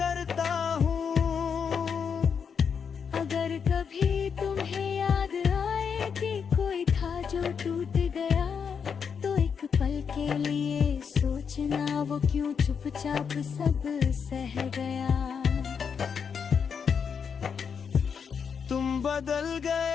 हूँ। अगर कभी तुम्हें याद आए कि कोई था जो टूट गया, तो एक पल के लिए सोचना वो क्यों चुपचाप सब सह गया। तुम बदल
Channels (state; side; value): quieter; right; 6.6 dB